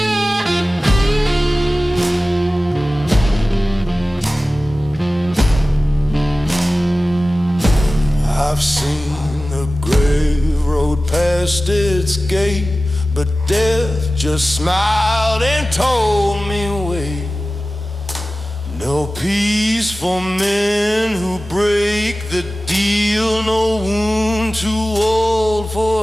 I've seen the grave road past its gate, but death just smiled and told me wait. No peace for men who break the deal, no wound too old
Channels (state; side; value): normal; both; correlation 0.96